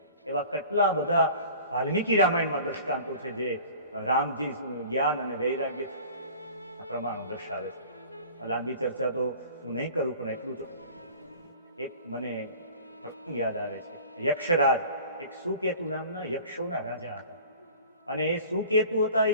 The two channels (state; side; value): inverted; both; correlation -0.44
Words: એવા કેટલા બધા વાલ્મીકી રામાયણમાં દ્રષ્ટાંતો છે જે રામજી જ્ઞાન અને વૈરાગ્ય પ્રમાણો દર્શાવે છે. લાંબી ચર્ચા તો હું નહીં કરું, પણ એટલું તો એક મને યાદ આવે છે. યક્ષરાજ, એક સુકેતુ નામના યક્ષોના રાજા હતા. અને એ સુકેતુ હતા, એ